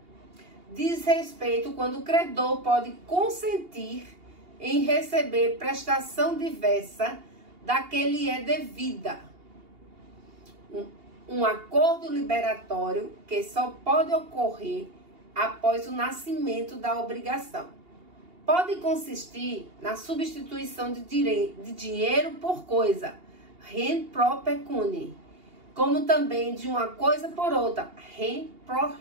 diz respeito quando o credor pode consentir em receber prestação diversa da que lhe é devida. Um acordo liberatório que só pode ocorrer após o nascimento da obrigação. Pode consistir na substituição de dinheiro por coisa, rem pro pecuni, como também de uma coisa por outra, rem pro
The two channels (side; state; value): left; late; 2.8 ms